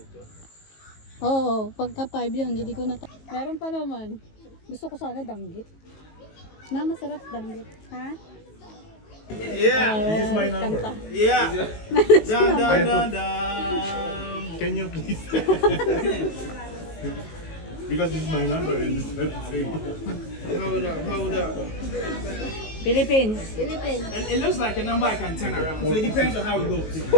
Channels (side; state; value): right; late; 19 ms